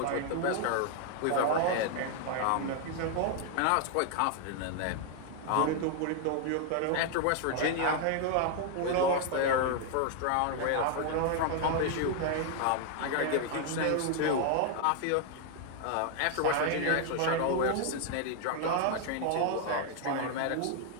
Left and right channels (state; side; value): different; both; correlation 0.00